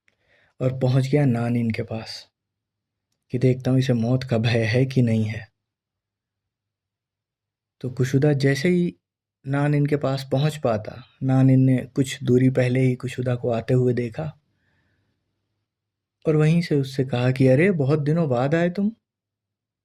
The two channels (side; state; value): both; identical; correlation 1.00